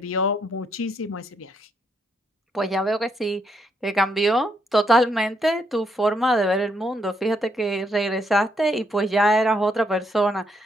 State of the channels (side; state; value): both; normal; correlation 0.75